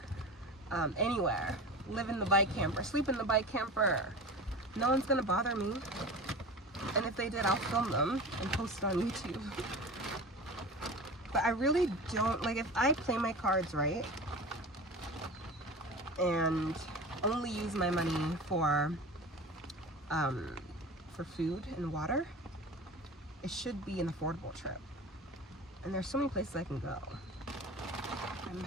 anywhere, live in the bike camper, sleep in the bike camper. No one's gonna bother me. And if they did, I'll film them and post it on YouTube. But I really don't, like, if I play my cards right and only use my money for food and water, it should be an affordable trip. And there's so many places I can go. I'm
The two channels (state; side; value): normal; both; correlation 0.32